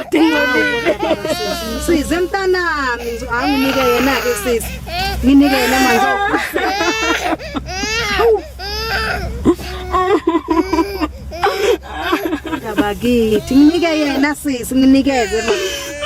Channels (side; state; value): both; identical; correlation 1.00